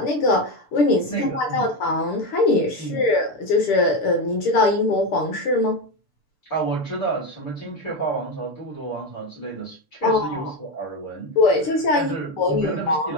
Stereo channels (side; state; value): right; late; 6.8 ms